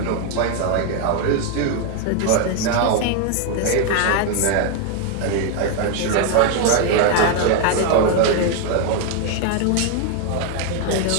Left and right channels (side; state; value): both; different; correlation 0.01